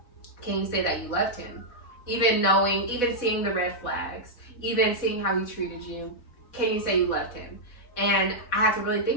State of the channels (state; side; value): late; right; 4.1 ms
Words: can you say that you loved him? Even seeing the red flags, even seeing how he treated you, can you say you loved him? And I had to really